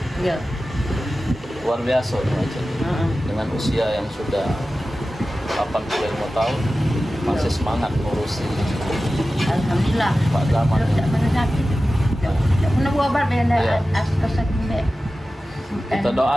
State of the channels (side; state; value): both; normal; correlation 0.95